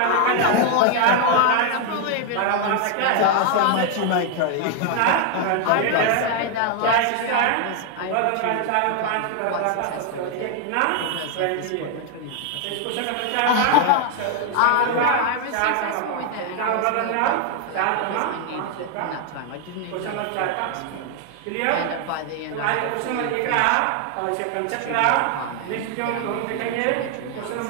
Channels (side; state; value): both; different; correlation 0.00